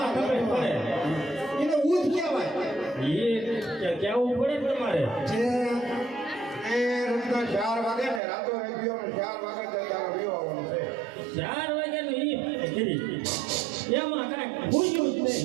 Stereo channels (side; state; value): left; drops out; at 8.2 s